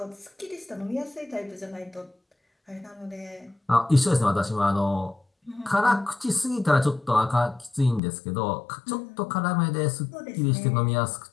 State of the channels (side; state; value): right; drops out; at 8.0 s